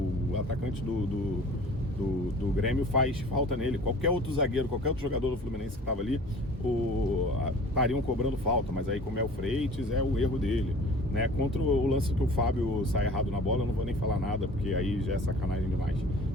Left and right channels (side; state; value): both; normal; correlation 0.46